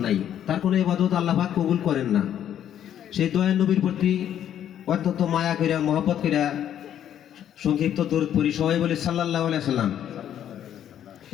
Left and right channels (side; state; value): right; quieter; 10.3 dB